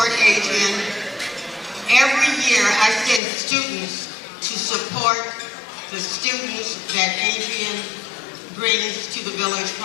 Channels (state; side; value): drops out; right; at 3.2 s